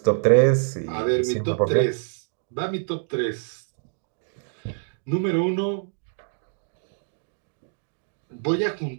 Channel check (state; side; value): silent; left; digital silence